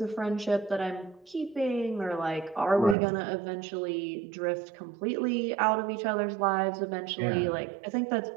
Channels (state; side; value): drops out; left; at 3.0 s